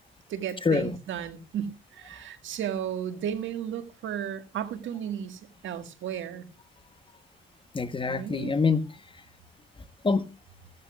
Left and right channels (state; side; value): normal; both; correlation 0.55